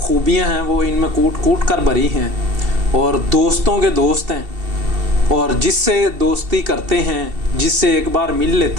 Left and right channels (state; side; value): late; left; 2.7 ms